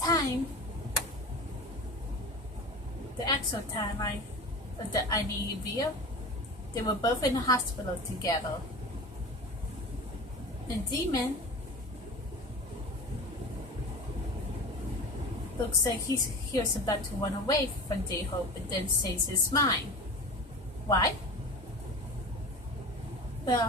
time, the actual timeline of the I Need You video, they were both in the hospital together. And Jimin looks like he was about to run away from J-Hope and then says his mind. Why?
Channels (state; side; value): normal; both; correlation 0.33